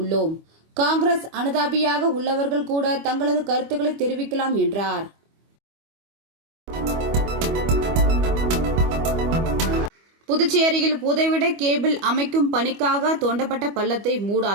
காங்கிரஸ் அனுதாபியாக உள்ளவர்கள் கூட தங்களது கருத்துக்களை தெரிவிக்கலாம் என்றார். புதுச்சேரியில் புதைவிட கேபிள் அமைக்கும் பணிக்காக தோண்டப்பட்ட பள்ளத்தை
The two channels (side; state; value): left; late; 25 ms